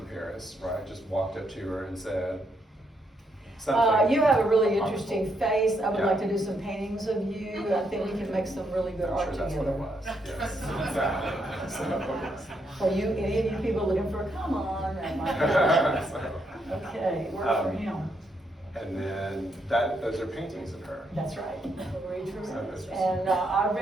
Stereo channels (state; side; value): normal; both; correlation 0.77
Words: Paris, right? Just walked up to her and said something. You have a really interesting face. I would Yeah. like to do some paintings of you. I think we can make some really good I'm art sure that's together. what it was. Yes, exactly. Are you, any of you people looking for a come on? Okay, work for him. And then those are paintings of her. That's right, Marie Therese. that's- And I